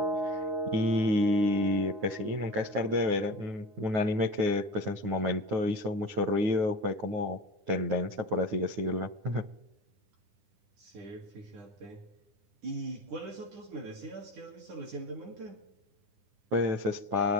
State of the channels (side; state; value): left; late; 9.8 ms